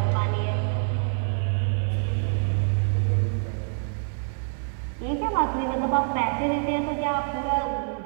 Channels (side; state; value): left; silent; 56 dB below the other